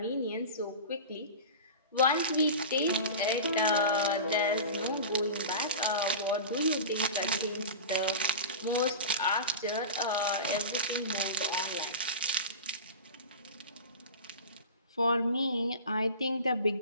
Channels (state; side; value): inverted; both; correlation -0.31